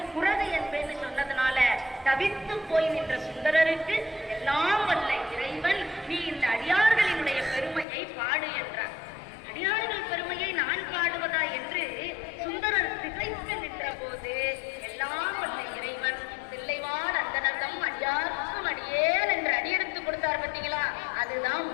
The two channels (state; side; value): drops out; right; at 7.9 s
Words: குரது என்பேன்னு சொன்னதுனால தவித்து போய் நின்ற சுந்தரருக்கு எல்லாம் வல்ல இறைவன் நீ இந்த அடியார்களினுடைய பெருமையை பாடு என்றார். அடியார்கள் பெருமையை நான் பாடுவதா என்று சுந்தரர் திகைத்து நின்ற போது எல்லாம் வல்ல இறைவன் தில்லைவாழ் அந்தனர்தம் அடியார்க்கும் அடியேன் என்று அடியெடுத்து கொடுத்தார். பார்த்தீங்களா? அதுதான்